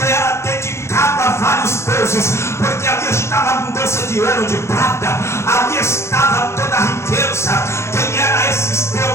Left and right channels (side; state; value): right; late; 0.13 ms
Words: era dedicado a vários deuses, porque ali estava a abundância de ouro, de prata, ali estava toda a riqueza. Quem eram esses